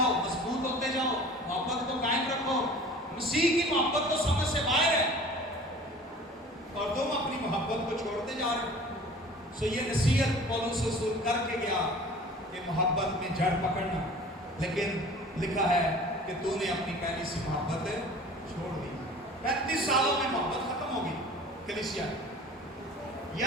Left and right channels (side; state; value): both; normal; correlation 0.44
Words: مضبوط ہوتے جاؤ، محبت کو قائم رکھو۔ مسیح کی محبت تو سمجھ سے باہر ہے اور تم اپنی محبت کو چھوڑتے جا رہے ہو۔ سو یہ نصیحت پولس رسول کر کے گیا کہ محبت میں جڑ پکڑنا، لیکن لکھا ہے کہ تو نے اپنی پہلی سی محبت چھوڑ دی۔ 35 سالوں میں محبت ختم ہو گئی کلیسیا۔